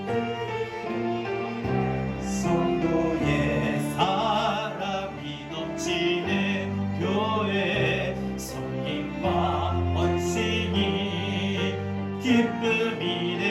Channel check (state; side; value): identical; both; correlation 1.00